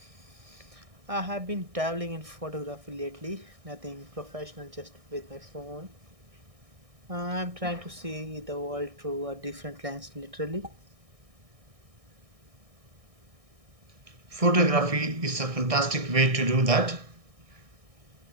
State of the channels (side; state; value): left; late; 1.6 ms